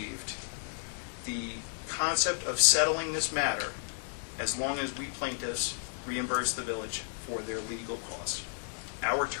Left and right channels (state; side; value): silent; right; digital silence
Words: the concept of settling this matter as long as we plaintiffs reimburse the village for their legal costs. Our